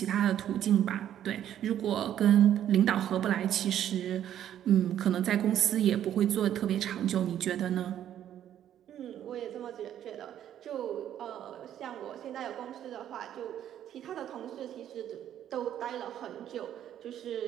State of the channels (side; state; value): left; quieter; 10.8 dB